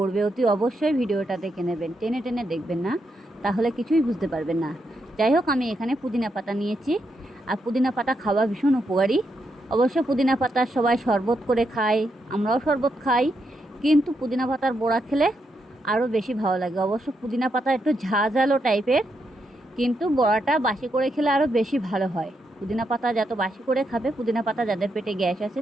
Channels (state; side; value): normal; both; correlation 0.81